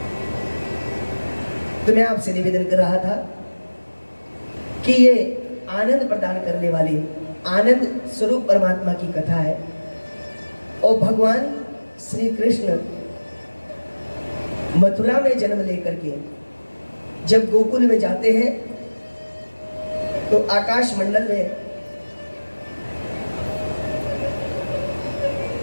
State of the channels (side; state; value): both; inverted; correlation -1.00